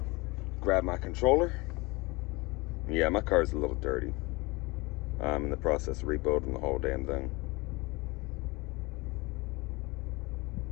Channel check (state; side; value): quieter; right; 24.3 dB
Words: grab my controller. Yeah, my car's a little dirty. I'm in the process of rebuilding the whole damn thing.